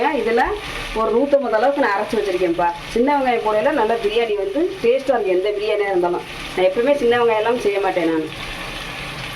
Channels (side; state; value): both; identical; correlation 1.00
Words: இதில் ஒரு 150 அளவுக்கு நான் அரைச்சி வச்சுருக்கேன்ப்பா. சின்ன வெங்காயம் போடையில் நல்லா பிரியாணி வந்து டேஸ்ட்டாக இருக்குது. எந்த பிரியாணியாக இருந்தாலும் நான் எப்பவுமே சின்ன வெங்காயம் எல்லாம் செய்ய மாட்டேன். நான்